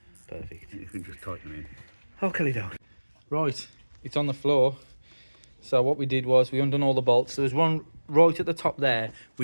perfect. You can just tighten them in. Okay, down. Right, it's on the floor. So what we did was we undone all the bolts. There was one right at the top there,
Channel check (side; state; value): both; inverted; correlation -1.00